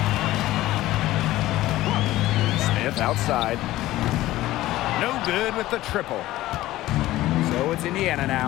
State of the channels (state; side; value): quieter; right; 16.1 dB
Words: Smith outside. No good with the triple. So it's Indiana